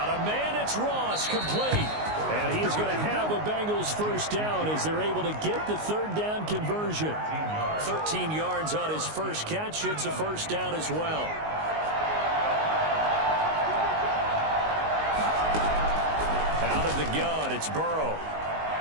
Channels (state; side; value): late; left; 19 ms